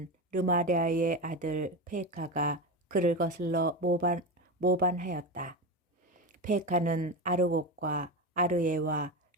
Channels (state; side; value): normal; both; correlation 0.20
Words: 르마랴의 아들 페카가 그를 거슬러 모반하였다. 페카는 아르곡과 아르에와